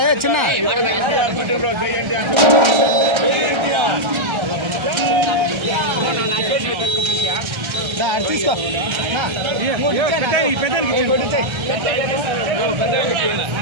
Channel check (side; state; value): left; late; 1.3 ms